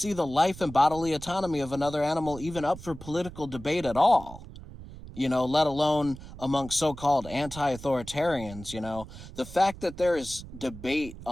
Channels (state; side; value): noise; right; rumble, 14 dB below the sound